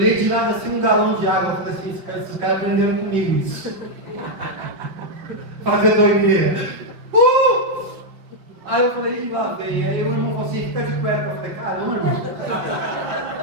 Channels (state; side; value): late; left; 5.3 ms